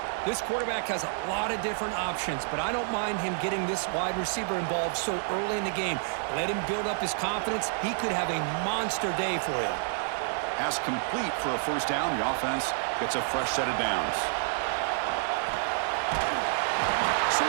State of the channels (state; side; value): silent; left; digital silence